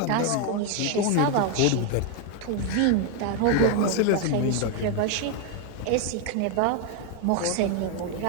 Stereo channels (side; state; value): both; different; correlation 0.01